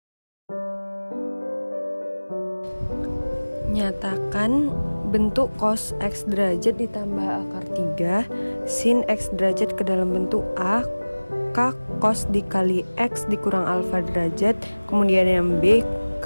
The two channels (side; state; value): both; inverted; correlation -1.00